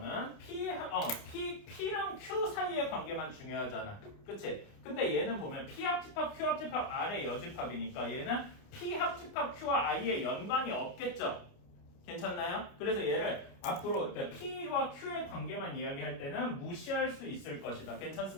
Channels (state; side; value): late; right; 29 ms